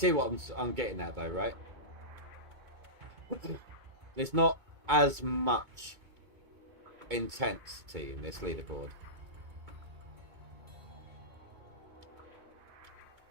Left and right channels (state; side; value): late; left; 2.2 ms